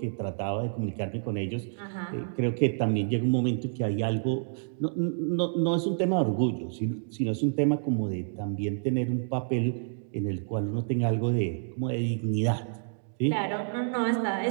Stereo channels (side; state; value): left; silent; digital silence